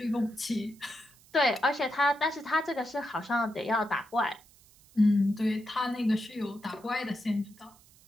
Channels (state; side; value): noise; right; hiss, 27 dB below the sound